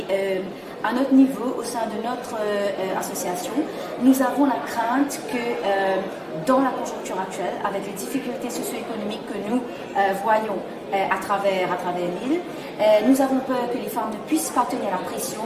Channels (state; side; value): identical; both; correlation 1.00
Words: à notre niveau, au sein de notre association, nous avons la crainte que dans la conjoncture actuelle, avec les difficultés socio-économiques que nous voyons à travers l'île, nous avons peur que les femmes ne puissent pas tenir la pression